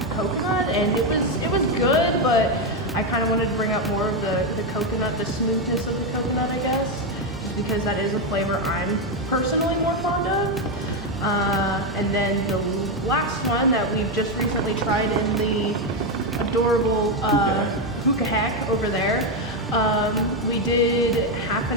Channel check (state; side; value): normal; both; correlation 0.06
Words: coconut, and it was good, but I kind of wanted to bring out more of the coconut, the smoothness of the coconut, I guess, just because that is a flavor I'm personally more fond of. And then the last one that we've just recently tried in the adorable hookah hack over there, we did half